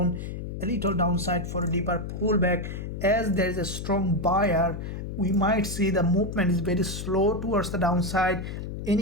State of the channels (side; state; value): left; noise; hum, 6 dB below the sound